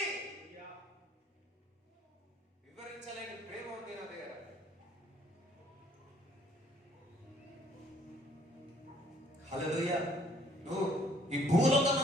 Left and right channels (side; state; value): both; normal; correlation 0.62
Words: వివరించలేని ప్రేమ ఉంది నా దగ్గర. హల్లెలూయా. నువ్వు ఈ భూలోకం,